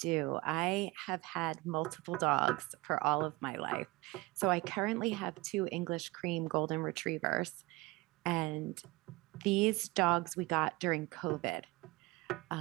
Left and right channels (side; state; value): left; quieter; 22.1 dB